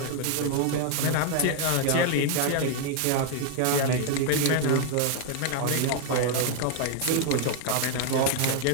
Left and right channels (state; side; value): different; both; correlation 0.00